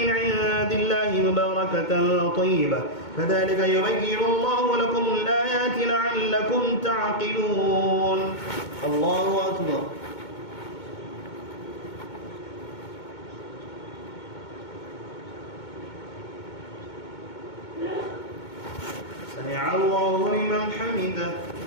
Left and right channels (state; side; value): late; right; 2.2 ms